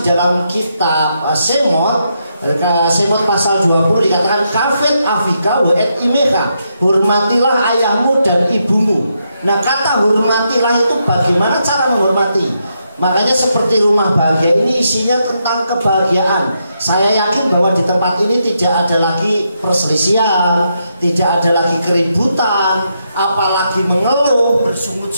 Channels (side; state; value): both; inverted; correlation -0.81